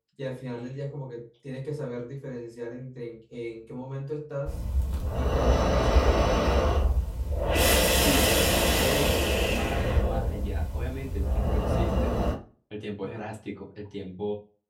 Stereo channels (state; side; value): identical; both; correlation 1.00